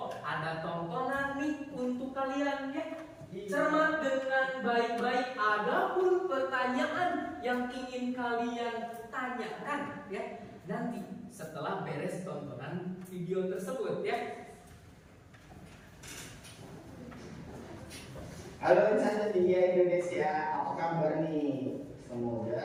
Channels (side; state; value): both; identical; correlation 1.00